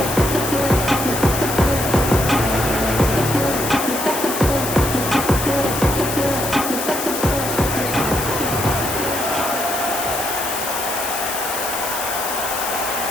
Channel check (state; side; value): noise; left; hiss, 5 dB below the sound